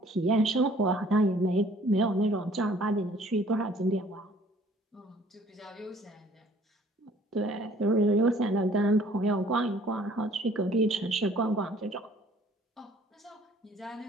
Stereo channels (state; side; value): normal; both; correlation 0.56